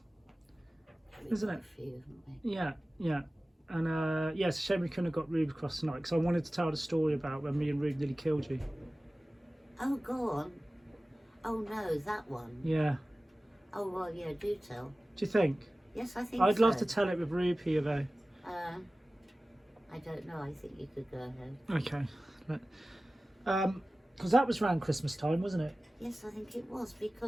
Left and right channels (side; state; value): both; normal; correlation 0.97